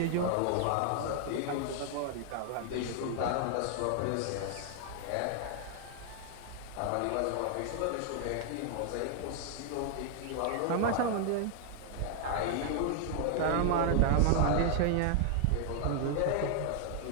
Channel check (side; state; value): both; different; correlation 0.00